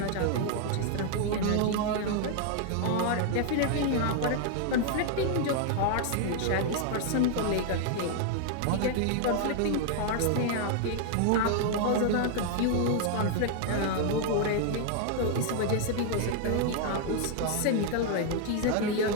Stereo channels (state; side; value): different; both; correlation 0.00